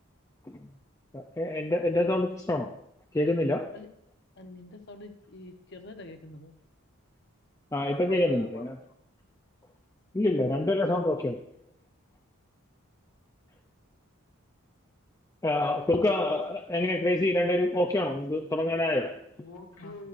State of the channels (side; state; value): both; normal; correlation 0.74